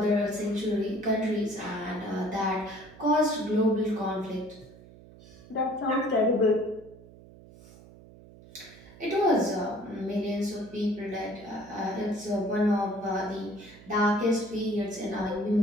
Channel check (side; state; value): right; noise; hum, 21 dB below the sound